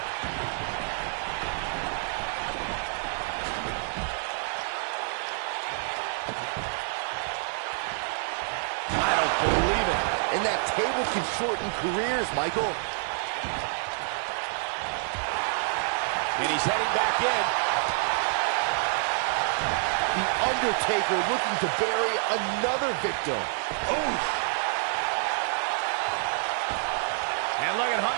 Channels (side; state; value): left; silent; 59 dB below the other